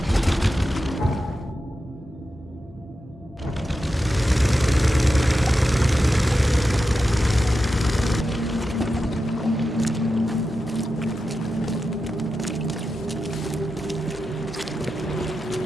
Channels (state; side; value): normal; both; correlation 0.90